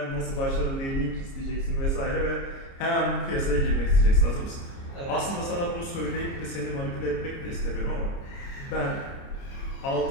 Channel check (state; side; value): late; right; 29 ms